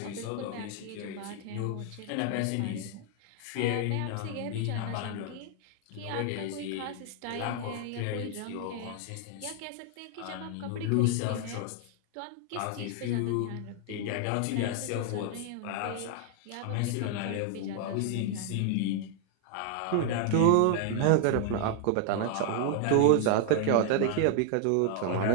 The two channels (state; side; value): different; both; correlation 0.00